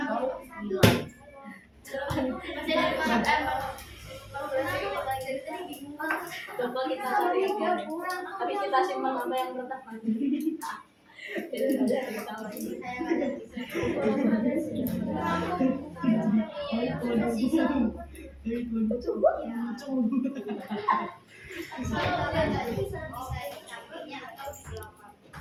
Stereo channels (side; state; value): both; identical; correlation 1.00